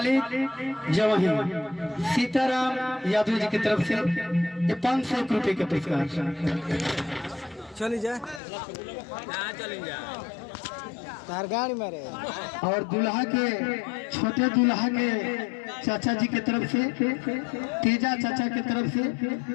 जवही सीताराम यादव जी की तरफ से 500 रुपए के पुरस्कार। चली जा तार गाड़ी मारे। और दूल्हा के छोटे दूल्हा के चाचा जी की तरफ से तेजा चाचा की तरफ से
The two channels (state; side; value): drops out; right; at 8.4 s